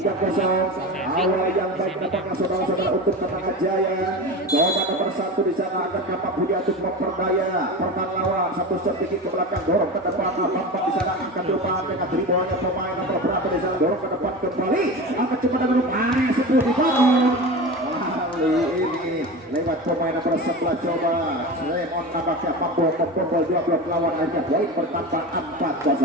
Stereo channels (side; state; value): both; normal; correlation 0.27